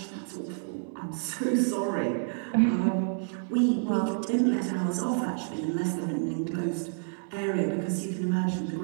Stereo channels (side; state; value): left; silent; digital silence